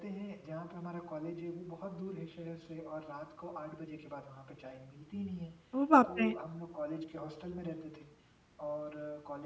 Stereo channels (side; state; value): both; identical; correlation 1.00